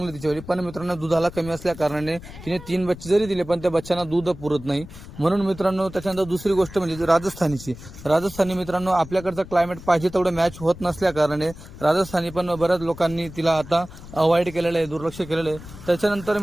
तिच्यावर, पण मित्रांनो दुधाला कमी असल्या कारणाने तिने 3 बच्चे जरी दिले पण त्या बच्चांना दूध पुरत नाही. म्हणून मित्रांनो, त्याच्यानंतर दुसरी गोष्ट म्हणजे राजस्थानी मित्रांनो, आपल्याकडचं क्लायमेट पाहिजे तेवढं मॅच होत नसल्या कारणाने राजस्थानी पण बऱ्याच लोकांनी तिला आता अवॉइड केलेलं आहे, दुर्लक्ष केलेलं आहे. त्याच्यानंतर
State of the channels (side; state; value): left; noise; rumble, 15 dB below the sound